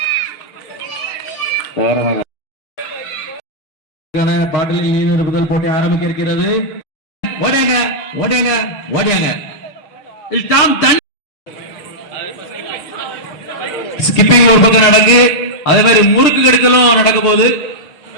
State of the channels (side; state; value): right; late; 6.6 ms